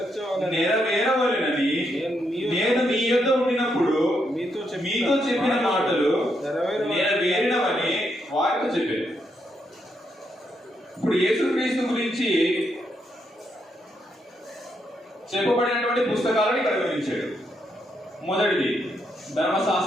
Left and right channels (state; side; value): normal; both; correlation 0.79